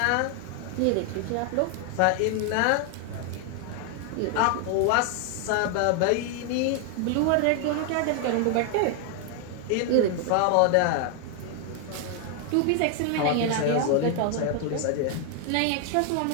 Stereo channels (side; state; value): both; different; correlation 0.00